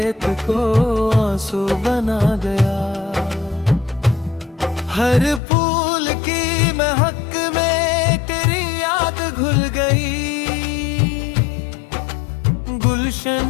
को आंसू बना गया। हर फूल की महक में तेरी याद घुल गई,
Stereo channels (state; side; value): drops out; right; at 5.4 s